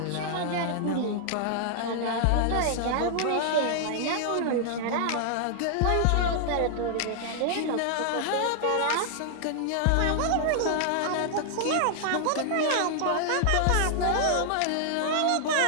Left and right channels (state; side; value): different; both; correlation 0.00